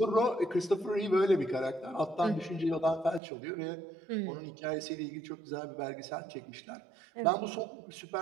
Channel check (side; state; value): left; drops out; at 3.2 s